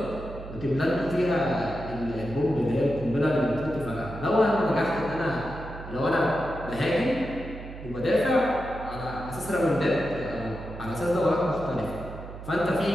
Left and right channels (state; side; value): noise; right; hum, 12 dB below the sound